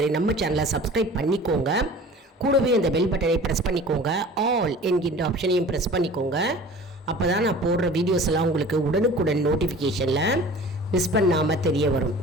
நம்ம சேனலை சப்ஸ்கிரைப் பண்ணிக்கோங்க. கூடவே அந்த பெல் பட்டனை ப்ரெஸ் பண்ணிக்கோங்க. ஆல் என்கின்ற ஆப்ஷனையும் ப்ரெஸ் பண்ணிக்கோங்க. அப்போ தான் நான் போடுற வீடியோஸ் எல்லாம் உங்களுக்கு உடனுக்குடன் நோட்டிஃபிகேஷனில் மிஸ் பண்ணாமல் தெரிய வரும்.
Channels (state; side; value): normal; both; correlation 0.43